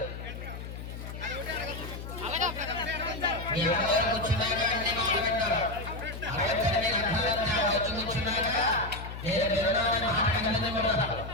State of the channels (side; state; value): left; noise; hum, 9 dB below the sound